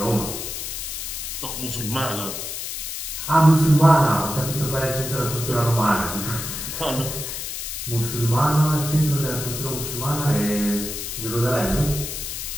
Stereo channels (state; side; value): noise; left; hiss, 6 dB below the sound